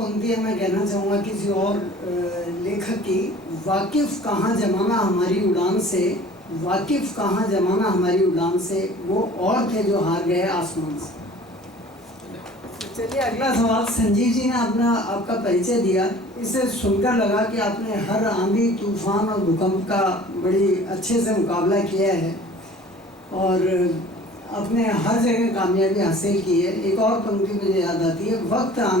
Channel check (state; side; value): normal; both; correlation 0.47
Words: मैं कहना चाहूँगा किसी और लेखक की। वाकिफ कहाँ जमाना हमारी उड़ान से, वाकिफ कहाँ जमाना हमारी उड़ान से, वो और थे जो हार गए आसमान से। चलिए, अगला सवाल। संजीव जी ने आपका परिचय दिया, इसे सुनकर लगा कि आपने हर आंधी, तूफान और भूकंप का बड़ी अच्छे से मुकाबला किया है और अपने हर जगह कामयाबी हासिल की है। एक और पंक्ति मुझे याद आती है, वक्त